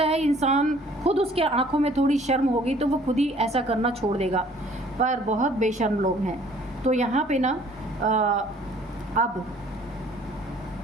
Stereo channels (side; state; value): both; normal; correlation 0.56